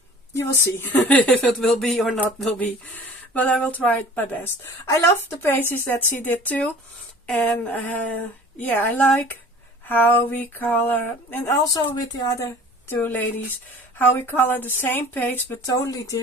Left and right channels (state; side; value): normal; both; correlation 0.45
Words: you will see if it will be or not will be. But I will try my best. I love the pages that she did too. And yeah, I like how we color. And also with the other 2 ladies, how we color the same page but totally